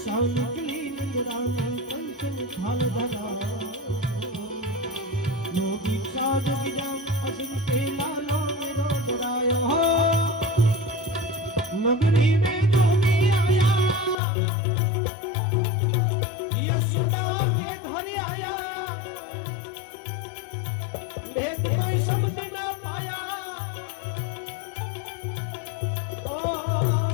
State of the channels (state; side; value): drops out; right; at 14.2 s